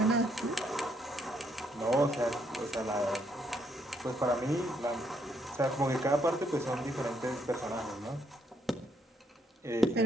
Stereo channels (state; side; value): normal; both; correlation 0.73